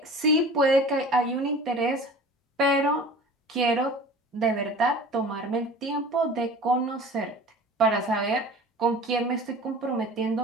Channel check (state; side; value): normal; both; correlation 0.41